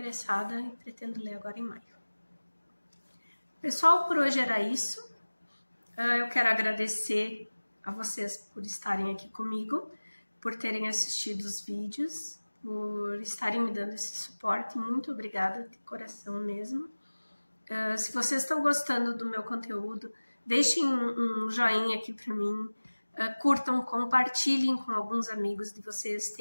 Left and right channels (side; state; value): both; inverted; correlation -1.00